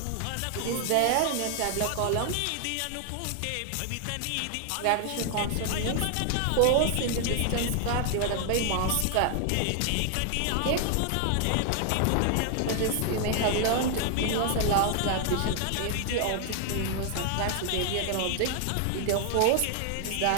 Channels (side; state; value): both; different; correlation 0.00